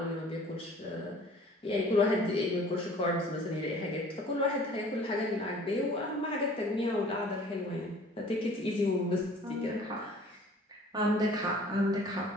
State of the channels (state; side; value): normal; both; correlation 0.50